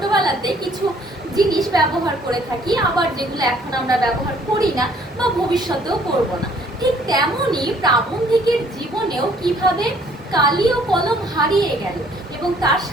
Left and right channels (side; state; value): both; normal; correlation 0.60